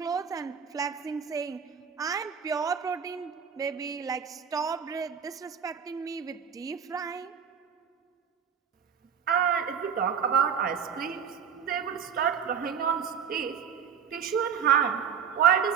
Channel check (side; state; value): left; quieter; 7.5 dB